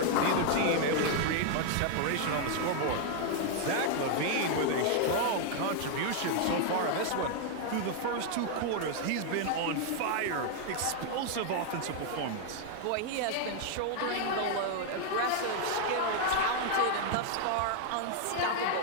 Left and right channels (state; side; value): different; both; correlation 0.00